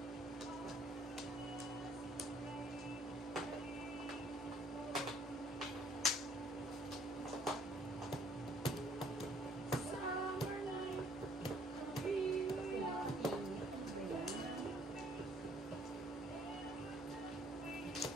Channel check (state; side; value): normal; both; correlation 0.61